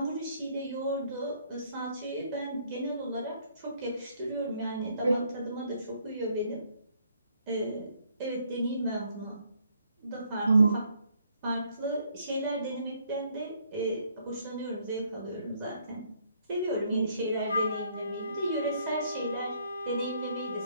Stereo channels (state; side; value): inverted; both; correlation -0.67